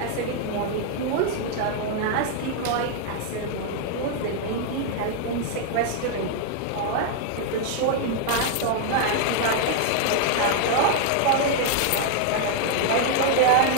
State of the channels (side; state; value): both; different; correlation 0.00